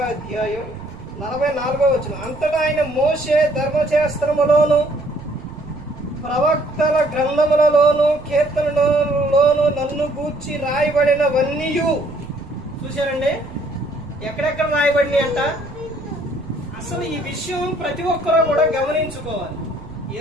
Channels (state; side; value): noise; right; rumble, 17 dB below the sound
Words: అధ్యాయం 44వ వచనం. అంతటా ఆయన మోషే ధర్మశాస్త్రములోను ప్రవక్తల గ్రంథములలోను కీర్తనలోను నన్ను గూర్చి రాయబడినవన్నీ. చూశారండి ఎక్కడెక్కడ రాయబడినాయి అంట. అసలు ఈ విషయం ప్రతి ఒక్కరూ కూడా గమనించుకోవాలి.